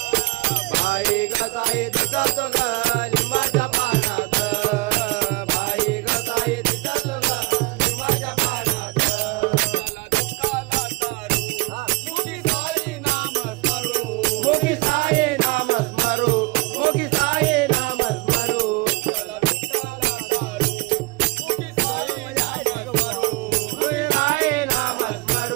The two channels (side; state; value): left; quieter; 24.4 dB